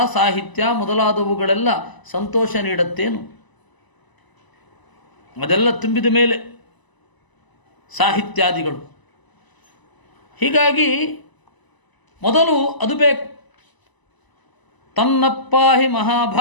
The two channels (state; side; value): late; right; 1.0 ms